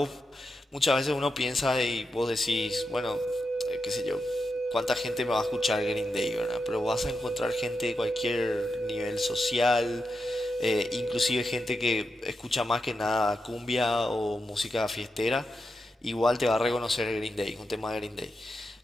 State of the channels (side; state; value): both; normal; correlation 0.87